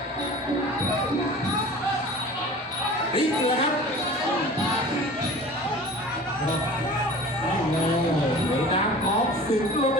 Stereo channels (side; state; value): both; normal; correlation 0.41